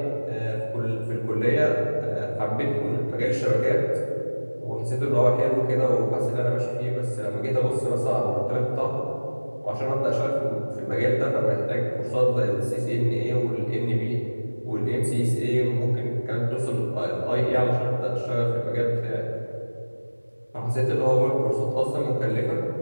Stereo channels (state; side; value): inverted; both; correlation -1.00